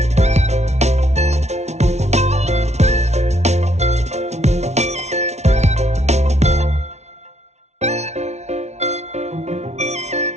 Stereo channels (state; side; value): late; left; 0.32 ms